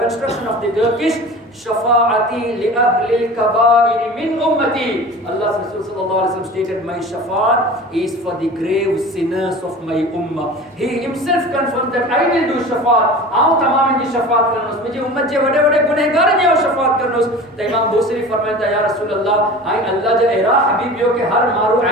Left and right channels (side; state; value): both; normal; correlation 0.37